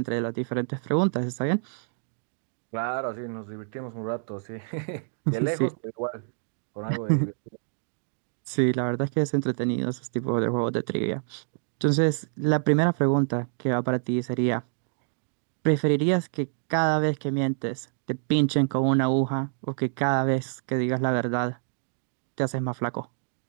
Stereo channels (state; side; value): silent; left; digital silence